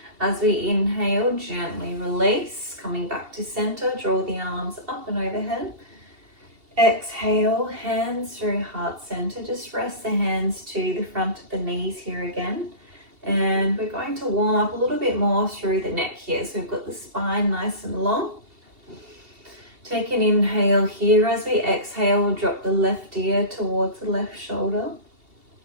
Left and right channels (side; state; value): left; late; 2.7 ms